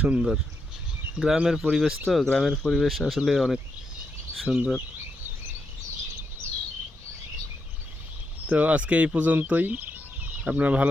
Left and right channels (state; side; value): normal; both; correlation 0.82